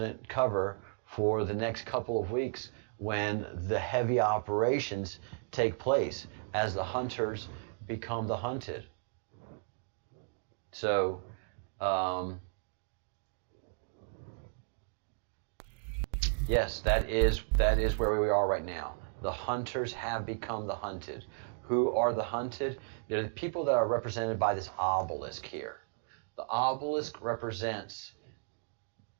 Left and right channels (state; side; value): silent; left; digital silence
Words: cover for the next couple of weeks when the heavy operations take place as the hunters become the hunted. So, yes, that is where we are right now. The hunters have become the hunted. Who are the hunted? They're the people that are represented by this obelisk here. The obelisk represents